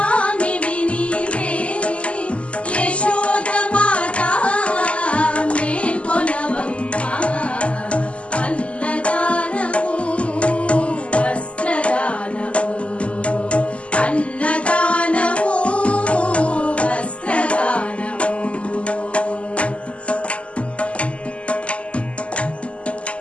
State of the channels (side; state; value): right; late; 0.059 ms